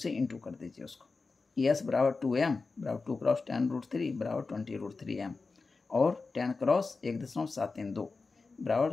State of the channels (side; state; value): right; quieter; 4.1 dB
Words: इंटू कर दीजिए उसको। एस बराबर 2m बराबर 2 क्रॉस 10√3 बराबर 20√3m और 10 क्रॉस 1.732 बराबर